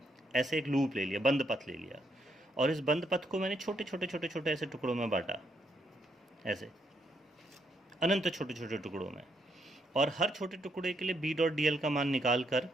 ऐसे एक लूप ले लिया, बंद पथ ले लिया, और इस बंद पथ को मैंने छोटे छोटे छोटे छोटे ऐसे टुकड़ों में बांटा, ऐसे अनंत छोटे छोटे टुकड़ों में। और हर छोटे टुकड़े के लिए बी डॉट डी एल का मान निकाल कर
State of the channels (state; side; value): normal; both; correlation 0.75